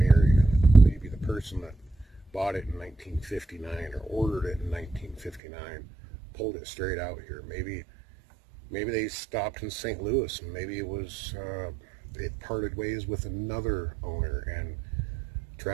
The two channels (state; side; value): drops out; left; at 5.4 s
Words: in it. Maybe the person that bought it in 1959 or ordered it in 1959 pulled it straight out here. Maybe they stopped in St. Louis, and maybe it parted ways with another owner, and